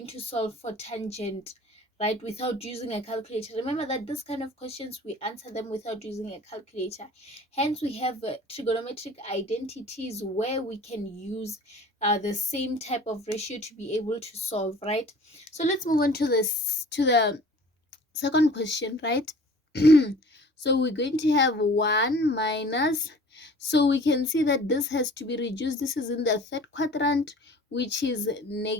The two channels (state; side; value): normal; both; correlation 0.47